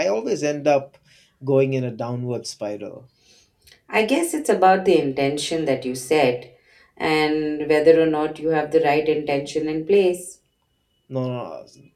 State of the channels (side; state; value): both; identical; correlation 1.00